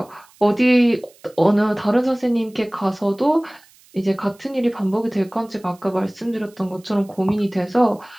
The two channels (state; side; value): noise; right; hiss, 28 dB below the sound